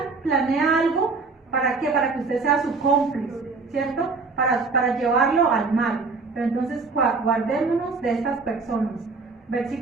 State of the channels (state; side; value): quieter; left; 4.2 dB